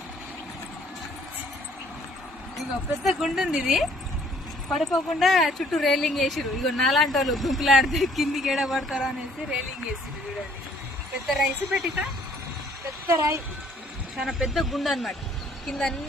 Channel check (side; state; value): both; normal; correlation 0.60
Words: ఇగో పెద్ద గుండు ఉంది, ఇది పడిపోకుండా చుట్టూ రైలింగ్ వేసిరు. ఇగో నాలాంటి వాళ్ళు గుంపులాడితే కిందికి ఏడ పడతారా అనేసి రైలింగ్ వేసిరు. చూడండి పెద్ద రైస్ పెట్టిక, పెద్ద రాయి, చాలా పెద్ద గుండు అనమాట. కింద